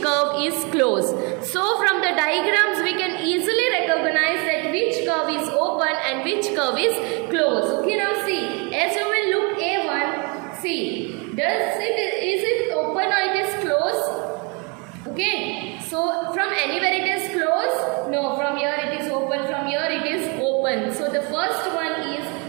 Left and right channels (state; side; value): quieter; left; 32.3 dB